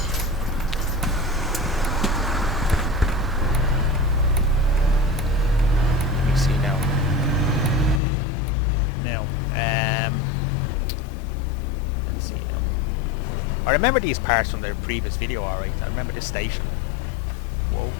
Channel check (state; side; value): drops out; right; at 8.0 s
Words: Let me see now. Let's see now. I remember these parts from the previous video, alright. I remember this station. Whoa,